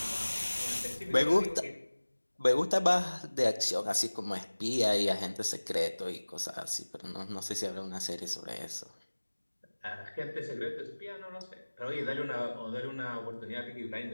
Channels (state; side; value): inverted; both; correlation -1.00